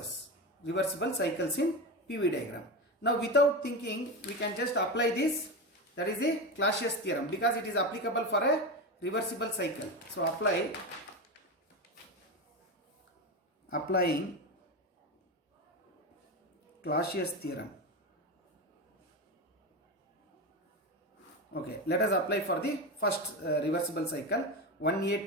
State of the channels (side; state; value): both; normal; correlation 0.19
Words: reversible cycles in PV diagram. Now without thinking, we can just apply this, that is a Clausius theorem, because it is applicable for a reversible cycle. So applying Clausius theorem. Okay, let us apply for the first reversible cycle, 1A